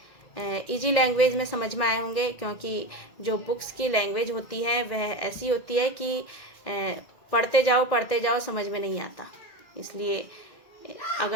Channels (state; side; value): late; right; 2.0 ms